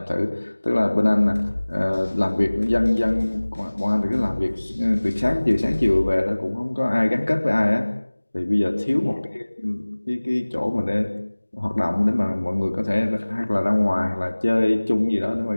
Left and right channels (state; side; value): inverted; both; correlation -1.00